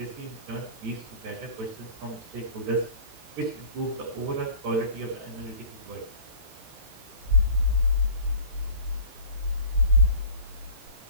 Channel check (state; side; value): late; left; 18 ms